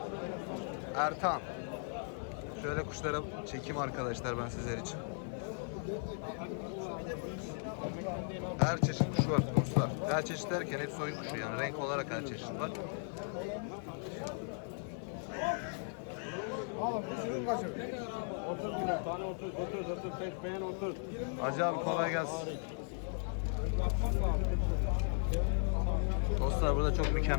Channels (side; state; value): right; silent; 53 dB below the other